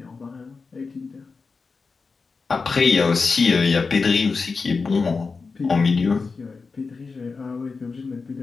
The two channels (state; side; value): quieter; right; 4.5 dB